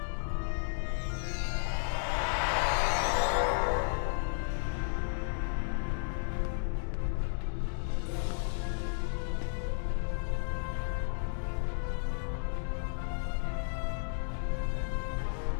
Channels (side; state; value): right; silent; 56 dB below the other